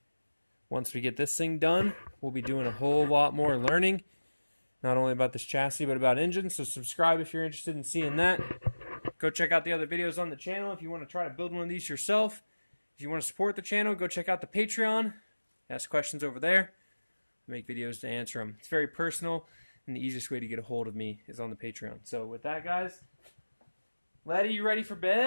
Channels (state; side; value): inverted; both; correlation -1.00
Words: once we get this thing done, we'll be doing a whole lot more learning. Not only about this chassis, but about engines. So subscribe if you're interested in seeing that. Go check out the other videos on the channel if you want to try to build one of these yourself. If you want to support the channel, go check out the Patreon. Ask questions over there. I make videos to answer them. It's very personal, and the easiest way to get a hold of me is on the Patreon. So with that, guys, Letty, you ready for